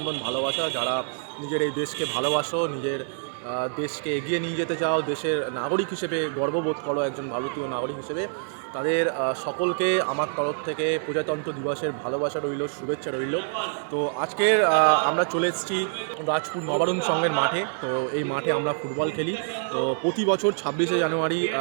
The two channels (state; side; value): silent; left; 57 dB below the other